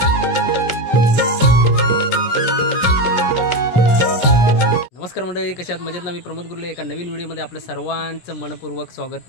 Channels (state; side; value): late; right; 17 ms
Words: नमस्कार मंडळी, कशात मजेत ना. मी प्रमोद गुर्ले एका नवीन व्हिडिओमध्ये आपलं सर्वांचं मनपूर्वक